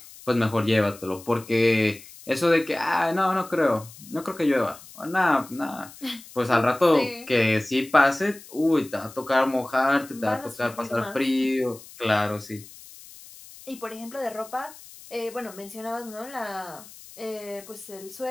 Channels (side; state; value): left; noise; hiss, 19 dB below the sound